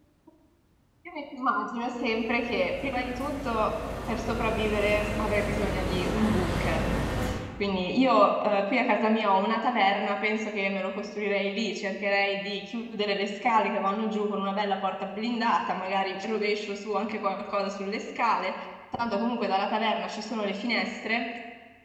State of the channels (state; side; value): identical; both; correlation 1.00